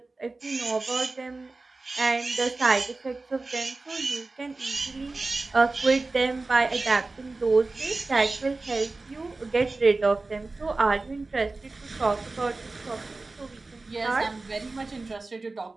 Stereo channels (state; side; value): quieter; left; 3.4 dB